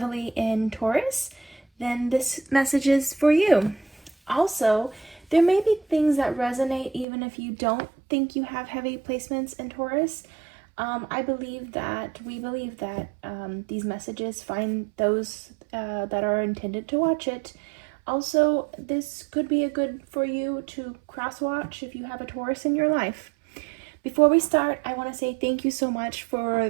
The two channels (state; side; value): drops out; left; at 7.1 s